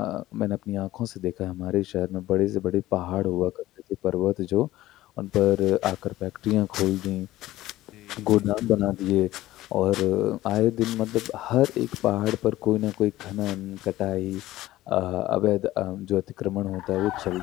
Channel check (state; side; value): quieter; right; 15.9 dB